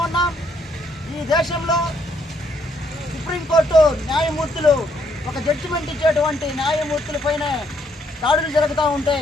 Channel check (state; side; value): normal; both; correlation 0.71